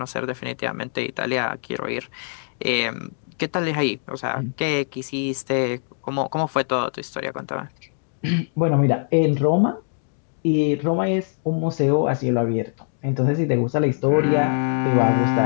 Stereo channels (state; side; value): silent; right; 60 dB below the other